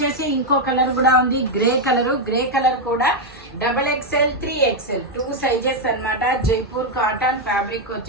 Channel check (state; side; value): normal; both; correlation 0.01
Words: ఇంకో కలర్ కూడా ఉంది, గ్రే కలర్ కూడా XXL, 3XL 2 సైజెస్ అన్నమాట. జైపూర్ కాటన్ ఫ్యాబ్రిక్